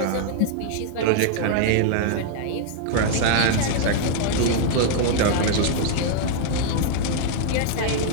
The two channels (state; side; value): different; both; correlation -0.01